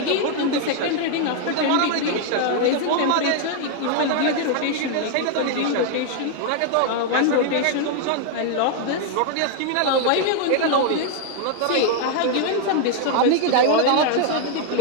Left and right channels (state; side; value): different; both; correlation 0.00